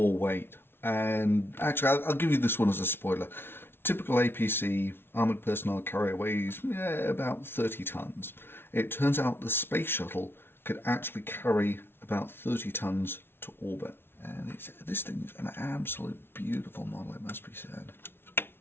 weight? And actually, I'll give you this one as a spoiler. Typical APC armoured personnel carrier weighs about 30 tons. It turns out the space shuttle could actually carry about 30 tons to orbit. And this thing is an absolute beautiful model, it must be said.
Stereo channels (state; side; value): late; right; 0.11 ms